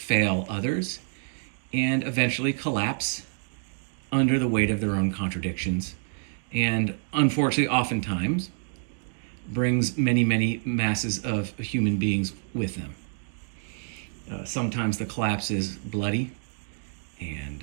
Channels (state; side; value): silent; left; digital silence